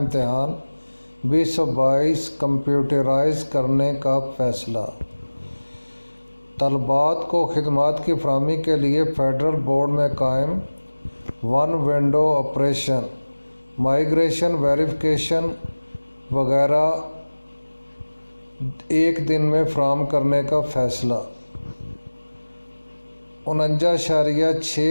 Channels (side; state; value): both; inverted; correlation -1.00